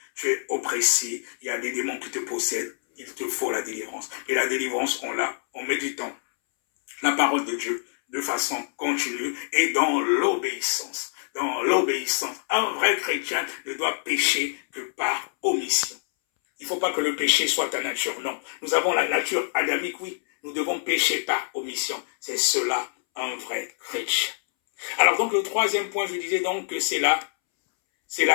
tu es oppressé, il y a des démons qui te possèdent, il te faut la délivrance. Et la délivrance, on l'a en méditant la parole de Dieu, de façon continue et dans l'obéissance. Dans l'obéissance, un vrai chrétien ne doit pécher que par omission. Il ne faut pas que le péché soit ta nature, non. Nous avons la nature adamique, oui. Nous devons pécher par omission. C'est cela, un vrai chrétien. Alors donc le troisième point, je disais donc que c'est la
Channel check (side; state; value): right; silent; 61 dB below the other